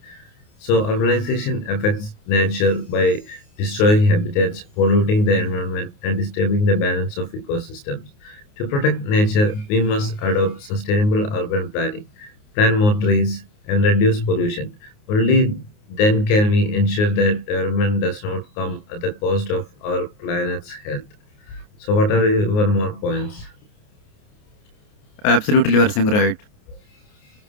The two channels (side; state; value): right; late; 29 ms